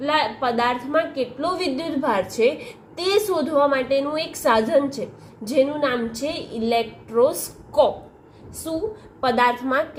પદાર્થમાં કેટલો વિદ્યુતભાર છે તે શોધવા માટેનું એક સાધન છે, જેનું નામ છે ઇલેક્ટ્રોસ્કોપ. શું? પદાર્થમાં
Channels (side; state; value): both; identical; correlation 1.00